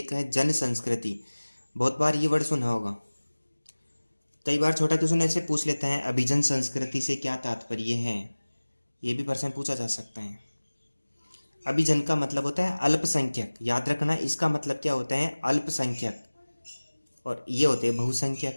है जन संस्कृति। बहुत बार ये वर्ड सुना होगा। कई बार छोटा क्वेश्चन ऐसे पूछ लेता है, अभिजन संस्कृति से क्या तात्पर्य है, ये भी प्रश्न पूछा जा सकता है। अभिजन का मतलब होता है अल्पसंख्यक, याद रखना इसका मतलब क्या होता है, अल्पसंख्यक, और ये होते हैं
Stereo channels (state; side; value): inverted; both; correlation -1.00